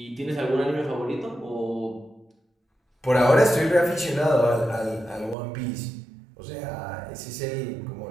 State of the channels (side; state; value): left; drops out; at 5.4 s